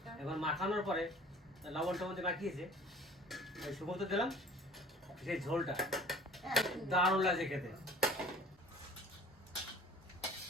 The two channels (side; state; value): both; normal; correlation 0.47